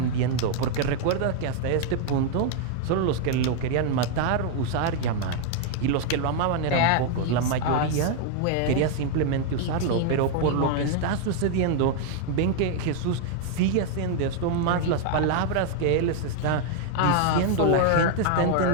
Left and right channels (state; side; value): different; both; correlation 0.00